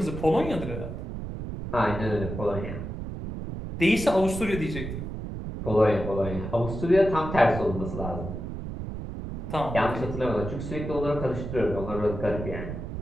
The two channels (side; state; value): right; noise; rumble, 7 dB below the sound